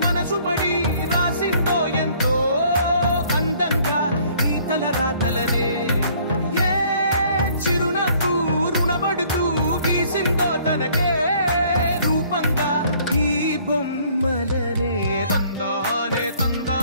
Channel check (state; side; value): inverted; both; correlation -0.59